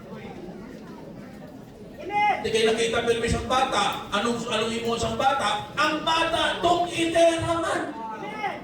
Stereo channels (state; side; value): identical; both; correlation 1.00